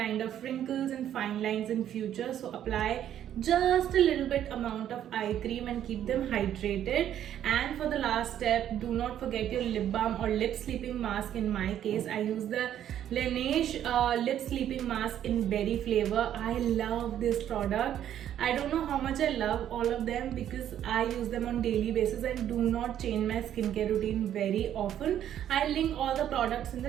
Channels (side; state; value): left; quieter; 10.7 dB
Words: of wrinkles and fine lines in future. So apply just a little bit amount of eye cream and keep them hydrated. And for the last step, do not forget your lip balm or lip sleeping mask. In my case, I use the Laneige lip sleeping mask in berry flavor. I love this product. I don't know how much I love all of them because I use them on daily basis and do not change my skincare routine very often. I'll link all the products in